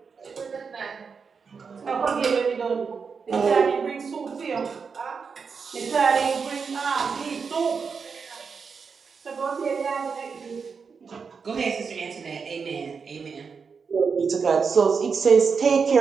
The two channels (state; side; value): quieter; left; 5.6 dB